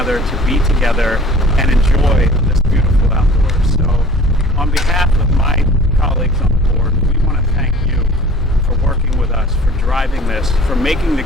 to be together and enjoy this beautiful outdoors. So on behalf of my colleagues on the board, we want to thank you for working with us, for driving this, for making the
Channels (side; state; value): both; normal; correlation 0.49